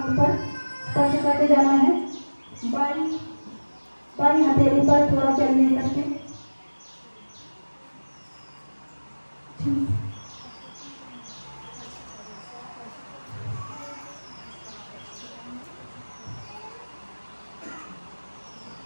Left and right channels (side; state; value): both; inverted; correlation -1.00